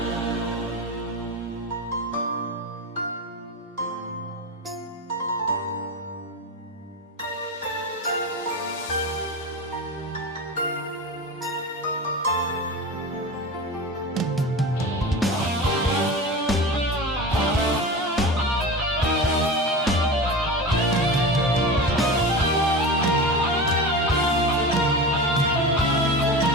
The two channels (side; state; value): both; normal; correlation 0.27